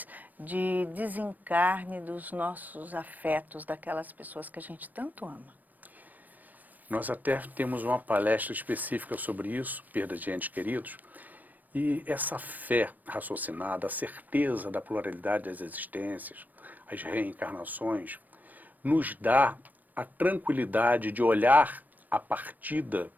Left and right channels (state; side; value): late; left; 0.085 ms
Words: de desencarne dos nossos afetos, daquelas pessoas que a gente tanto ama? Nós até temos uma palestra específica sobre isso, perda de entes queridos, e essa fé raciocinada, a certeza da pluralidade das existências, as reencarnações, nos dá a tranquilidade de olhar a partida